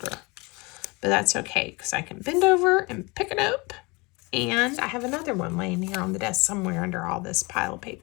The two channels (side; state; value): right; quieter; 26.4 dB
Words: But that's okay, because I can bend over and pick it up. And I have another one laying here on the desk somewhere under all this pile of